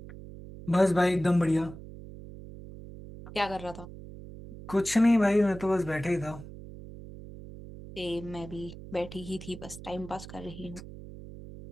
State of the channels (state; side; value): noise; right; hum, 14 dB below the sound